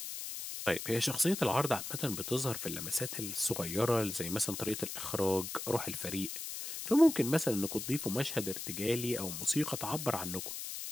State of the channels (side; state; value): left; noise; hiss, 6 dB below the sound